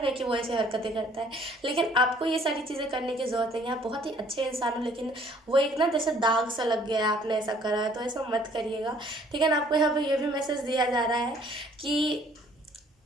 है कि वो ऐसी हरकतें करता है, लेकिन आपको ये सारी चीज़ें करने की ज़रूरत नहीं है। आप बहुत ही अच्छे इंसान हो, लेकिन वो एक ना जैसे दाग सा लग गया है, आपने ऐसा करा है, तो ऐसा मत करिएगा, ठीक है ना। आपको यहाँ पे ये भी मैसेज दिया जा रहा है कि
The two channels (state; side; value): normal; both; correlation 0.59